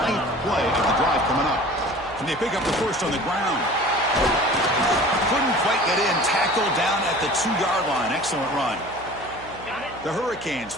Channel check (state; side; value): noise; right; hum, 19 dB below the sound